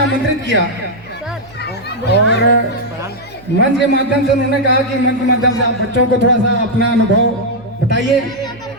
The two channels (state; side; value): noise; right; hum, 24 dB below the sound